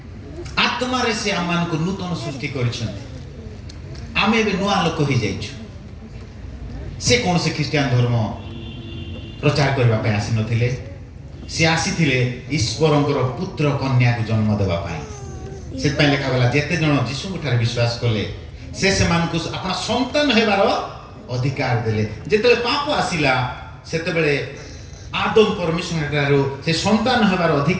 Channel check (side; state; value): both; identical; correlation 1.00